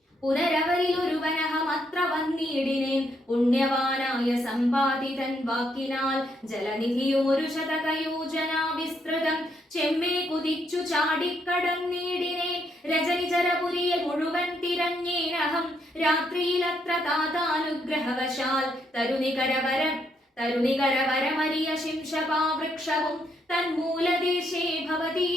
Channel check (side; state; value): both; normal; correlation 0.75